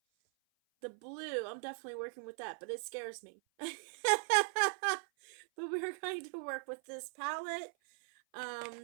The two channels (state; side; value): silent; left; 52 dB below the other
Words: The blue, I'm definitely working with that, but it scares me. But we're going to work with this palette.